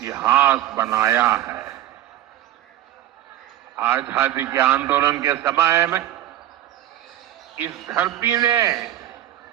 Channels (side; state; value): left; quieter; 13.3 dB